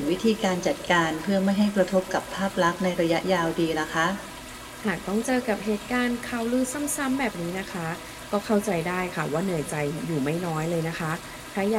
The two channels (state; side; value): identical; both; correlation 1.00